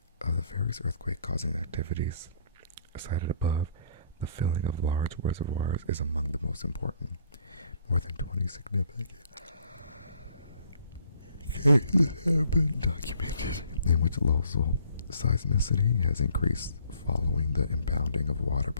Of the various earthquake-causing activities cited above, the filling of large reservoirs is among the most important. More than 20 significant cases have been documented in which local seismicity has increased following the impounding of water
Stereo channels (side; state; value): both; inverted; correlation -0.61